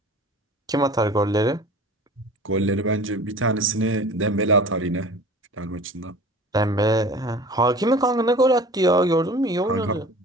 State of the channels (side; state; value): both; normal; correlation 0.41